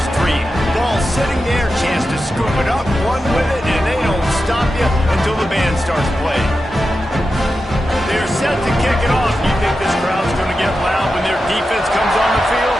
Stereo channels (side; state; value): both; normal; correlation 0.91